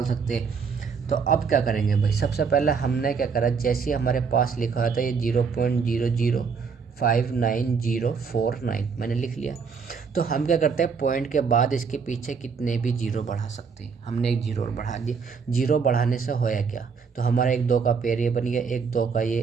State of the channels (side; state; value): left; quieter; 5.7 dB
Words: सकते। तो अब क्या करेंगे भाई? सबसे पहले हमने क्या करा, जैसे हमारे पास लिखा था ये 0.005949 मैंने लिख लिया। तो हम क्या करते हैं, पॉइंट के बाद इसके पीछे कितने भी जीरो बढ़ा सकते हैं। हमने एक जीरो बढ़ा दिया। जीरो बढ़ाने से होया क्या? तो हमारा 1 2 का पेयर ये बन गया, 1 2 का ये,